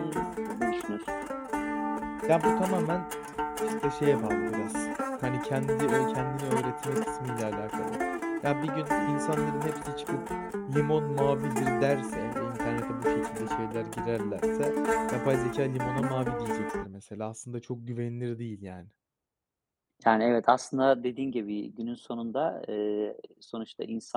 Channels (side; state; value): both; identical; correlation 1.00